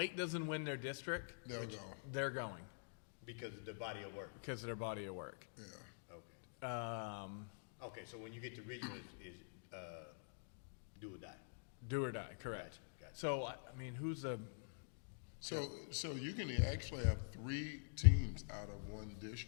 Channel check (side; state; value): right; silent; digital silence